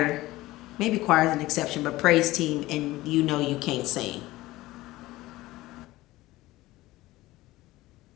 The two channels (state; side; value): quieter; right; 18.0 dB